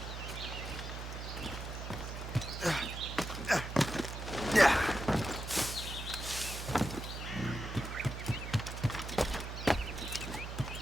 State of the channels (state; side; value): noise; right; hum, 7 dB below the sound